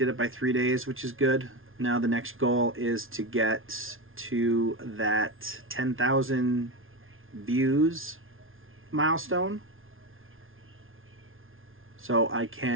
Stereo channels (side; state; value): left; late; 0.59 ms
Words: it by 3 days, which is good. Now the next goal is to get to that 10,000 views milestone, so I